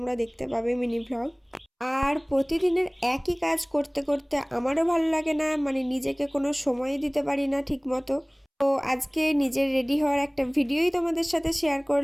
দেখতে পাবে, মিনি ব্লগ। আর প্রতিদিনের একই কাজ করতে করতে আমারও ভালো লাগে না, মানে নিজেকে কোনো সময় দিতে পারি না ঠিক মতো। তো আজকে নিজের রেডি হওয়ার একটা ভিডিওই তোমাদের সাথে শেয়ার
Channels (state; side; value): identical; both; correlation 1.00